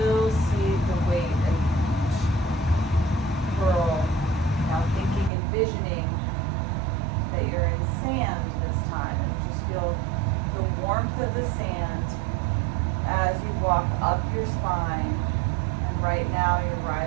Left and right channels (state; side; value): drops out; left; at 5.3 s